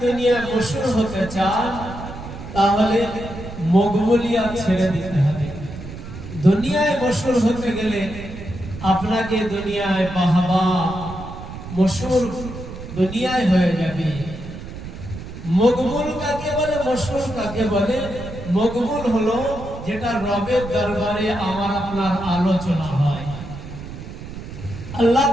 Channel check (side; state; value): right; noise; rumble, 11 dB below the sound